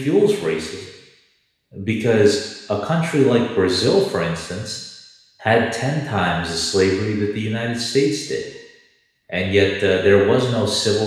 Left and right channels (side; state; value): both; identical; correlation 1.00